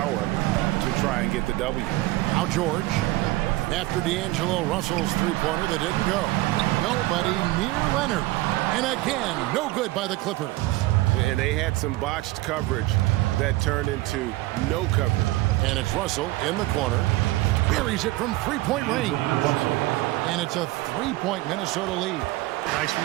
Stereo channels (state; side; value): quieter; left; 19.0 dB